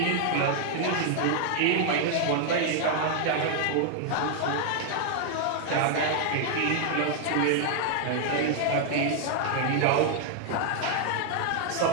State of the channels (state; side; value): different; both; correlation -0.01